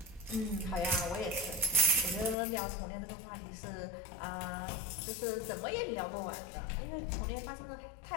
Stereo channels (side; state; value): right; drops out; at 2.4 s